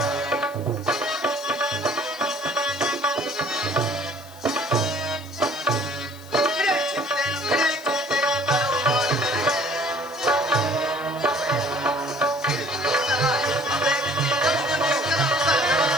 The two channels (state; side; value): noise; left; hiss, 22 dB below the sound